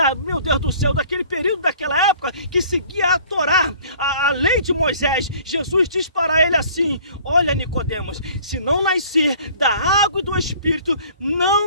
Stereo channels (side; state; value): both; inverted; correlation -0.52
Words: meu Deus do céu, daquele período, daquela época, que seguia a Torá, a lei de Moisés. Jesus diz para ele assim: olha, Nicodemos, se não nascer da água e do Espírito,